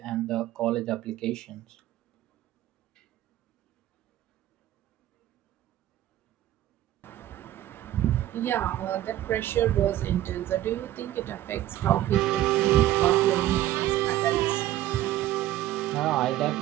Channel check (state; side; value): quieter; left; 13.8 dB